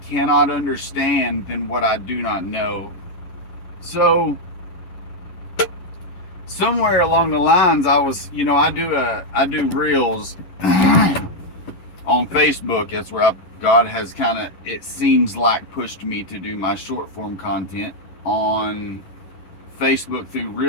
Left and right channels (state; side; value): late; right; 11 ms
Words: cannot understand than what I do not know. So somewhere along the lines, I was, I do reels on Facebook. That's where God has kind of, it seems like, pushed me to do my short form content on Facebook through